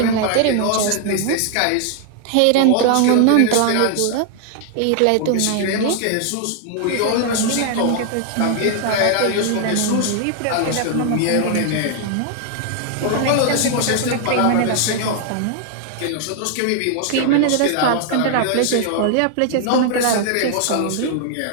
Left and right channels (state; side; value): different; both; correlation 0.00